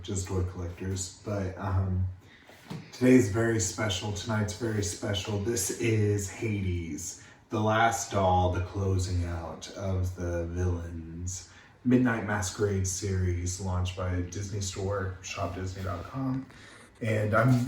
just toy collectors. But today's very special. Tonight's very special. This is Hades, the last doll, the closing out of the Villains Midnight Masquerade series launched by Disney Store, shopdisney.com. And I'm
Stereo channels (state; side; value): identical; both; correlation 1.00